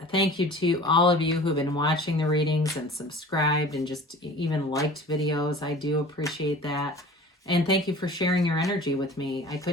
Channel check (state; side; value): normal; both; correlation 0.42